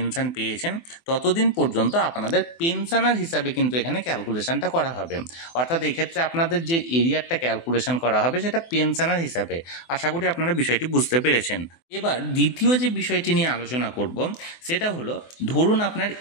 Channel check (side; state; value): right; late; 24 ms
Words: পেয়েছেন ততদিন পর্যন্ত আপনাদের পেনশনার হিসাবে কিন্তু এখানে ক্যালকুলেশনটা করা হবে। অর্থাৎ এক্ষেত্রে আপনাদের যে এরিয়ারটা ক্যালকুলেশন করা হবে সেটা পেনশনার হিসাবে। আশা করি আপনারা বিষয়টি বুঝতে পেরেছেন। এবার দ্বিতীয় যে বিষয়টি নিয়ে আলোচনা করব সেটা হলো, ধরুন আপনার